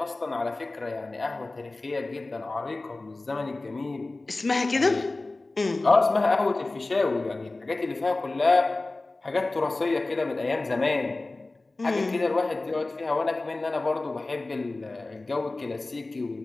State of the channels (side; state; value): right; quieter; 3.1 dB